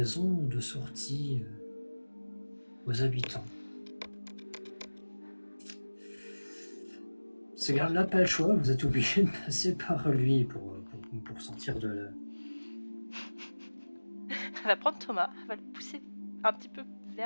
de sortie aux habitants. Ce garde-là, pas le choix, vous êtes obligé de passer par lui pour sortir de là. Elle va prendre Thomas, elle va le pousser un petit peu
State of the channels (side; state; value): both; inverted; correlation -1.00